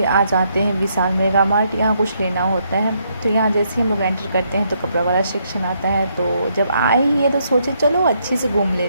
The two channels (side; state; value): both; inverted; correlation -0.74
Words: आ जाते हैं विशाल मेगा मार्ट। यहाँ कुछ लेना होता है, तो यहाँ जैसे ही हम लोग एंटर करते हैं तो कपड़ा वाला सेक्शन आता है। तो जब आए ही है तो सोचे चलो अच्छे से घूम